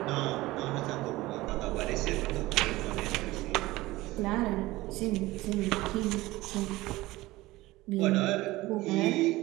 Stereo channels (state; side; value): quieter; left; 18.8 dB